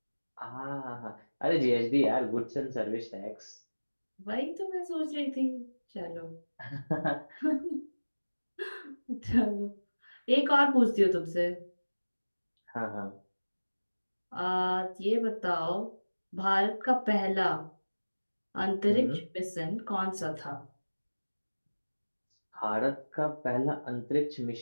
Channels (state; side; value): inverted; both; correlation -1.00